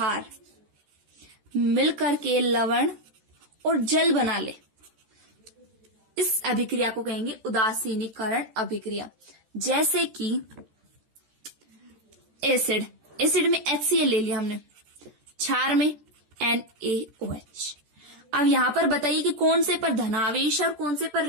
मिलकर के लवण और जल बना ले, इस अभिक्रिया को कहेंगे उदासीनीकरण अभिक्रिया। जैसे कि एसिड में HCl ले लिया हमने, क्षार में NaOH। अब यहां पर बताइए कि कौन से पर धनावेश है और कौन से पर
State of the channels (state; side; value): late; left; 14 ms